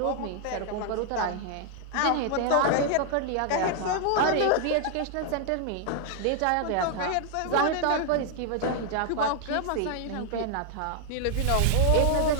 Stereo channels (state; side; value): different; both; correlation 0.00